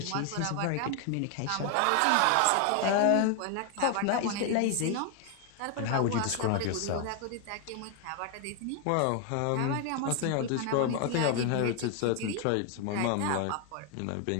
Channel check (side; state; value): both; different; correlation 0.01